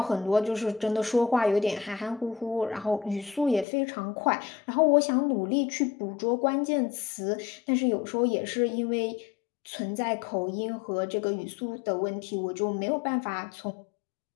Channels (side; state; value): right; drops out; at 3.7 s